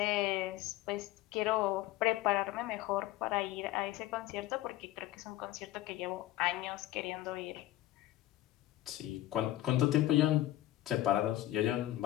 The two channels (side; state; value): right; quieter; 15.1 dB